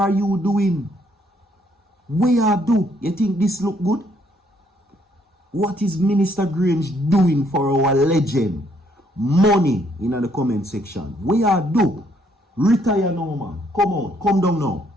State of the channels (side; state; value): both; normal; correlation 0.69